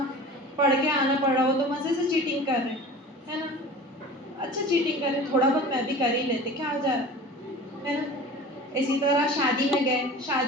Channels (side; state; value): both; normal; correlation 0.39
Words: پڑھ کے آنا پڑ رہا ہو تو مزے سے چیٹنگ کر رہے، ہے نا، اچھا چیٹنگ کر رہے، تھوڑا بہت میں بھی کر ہی لیتے، کیا ہو جا رہا ہے نا، اسی طرح شادی میں گئے،